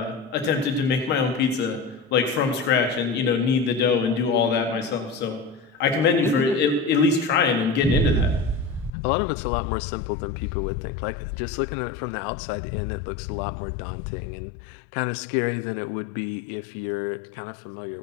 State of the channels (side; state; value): right; drops out; at 8.9 s